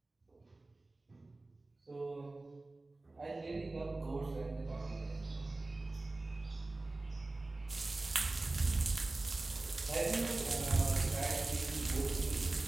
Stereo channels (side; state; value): left; quieter; 3.1 dB